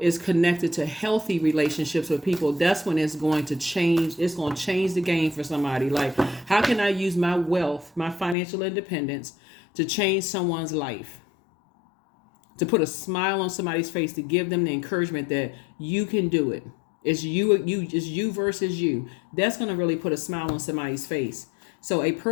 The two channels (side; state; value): right; drops out; at 8.3 s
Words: is connected to healthy relationships with people, that's when it's going to change. It's going to change the game for somebody. Like, how can I use my wealth, my financial independence to change someone's life? To put a smile on somebody's face, to give them the encouragement that you can do it. It's you versus you. That's going to really put a smile on somebody's face. So a